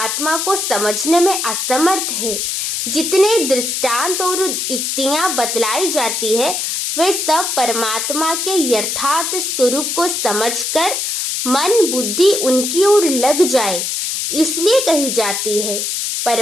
को समझने में असमर्थ है। जितने दृष्टांत और युक्तियां बतलाई जाती है वे सब परमात्मा के यथार्थ स्वरूप को समझकर मन बुद्धि उनकी ओर लग जाए इसलिए कही जाती है।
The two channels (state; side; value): noise; left; hiss, 1 dB below the sound